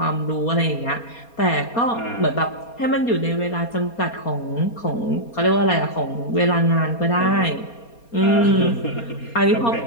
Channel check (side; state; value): right; late; 4.3 ms